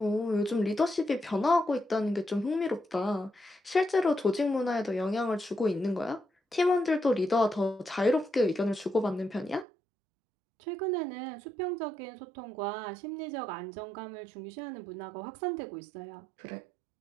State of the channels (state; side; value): drops out; left; at 9.7 s